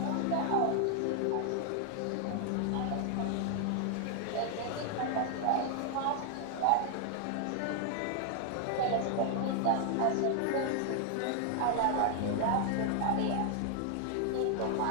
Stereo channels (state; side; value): different; both; correlation 0.00